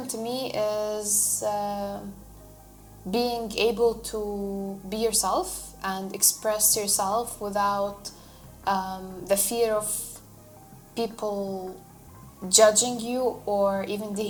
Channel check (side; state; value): both; identical; correlation 1.00